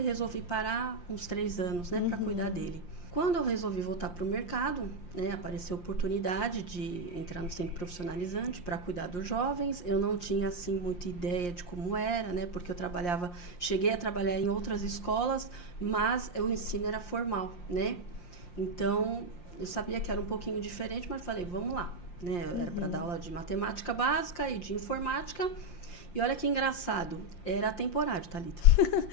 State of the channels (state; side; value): late; right; 5.7 ms